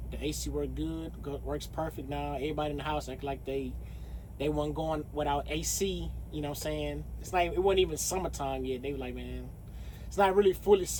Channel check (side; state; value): both; identical; correlation 1.00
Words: The AC worked good, works perfect now. Everybody in the house act like they weren't going without AC. It's not. It wasn't even summertime yet. They were like, man, it's not really fully